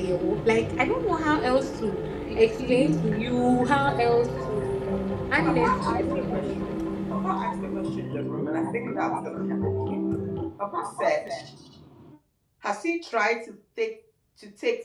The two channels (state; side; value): identical; both; correlation 1.00